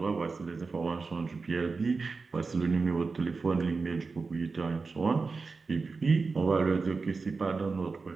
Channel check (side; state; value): left; quieter; 4.3 dB